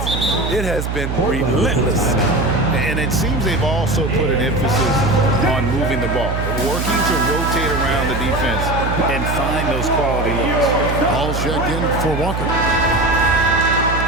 it has been relentless. And it seems they've also put an emphasis on moving the ball, working to rotate around the defense and find those quality looks. Ball checked in for Walker.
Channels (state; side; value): noise; right; hum, 3 dB below the sound